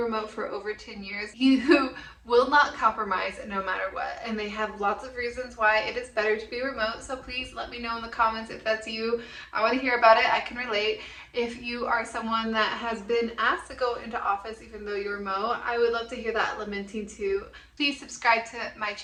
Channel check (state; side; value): identical; both; correlation 1.00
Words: for over 10 years who will not compromise no matter what, and they have lots of reasons why it is better to be remote. So please let me know in the comments if that's you. I want to hear about it. I can relate. If you are someone that has been asked to go into office even though you're remote, I would love to hear that lamenting too. Please subscribe to my